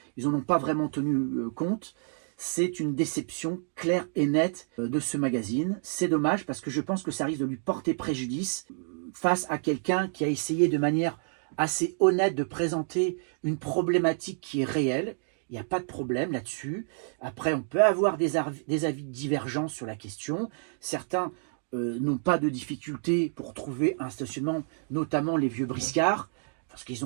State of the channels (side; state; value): left; silent; digital silence